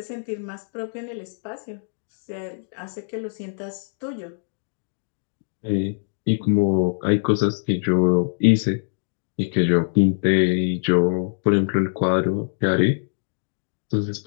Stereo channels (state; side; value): silent; right; digital silence